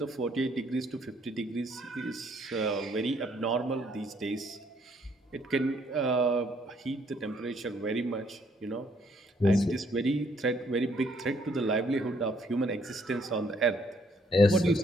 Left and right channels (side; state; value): both; normal; correlation 0.68